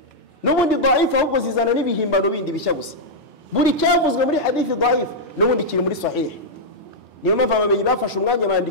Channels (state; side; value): normal; both; correlation -0.06